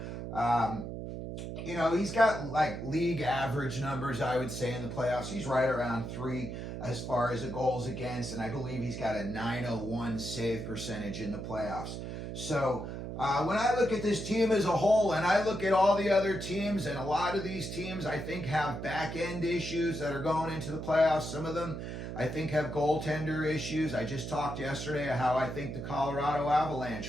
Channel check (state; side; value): noise; right; hum, 6 dB below the sound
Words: He's got like league average numbers, I would say, in the playoffs. He's right around 3 as far as the goals against, and I believe he's got a 901 save percentage in the playoffs. So when I look at this team as a whole, and I look at all the other teams, and a lot of these teams I think have back-end issues that are going into the playoffs. Some of them I think have goaltender issues. I just talked yesterday how I think the Colorado